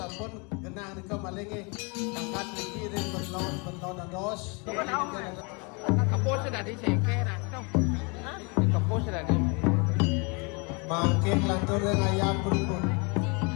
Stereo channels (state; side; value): quieter; right; 31.3 dB